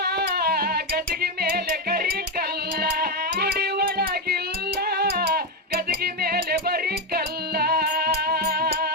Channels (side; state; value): both; normal; correlation 0.08